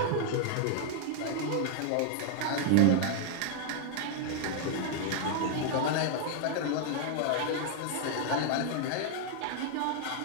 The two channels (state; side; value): different; both; correlation 0.00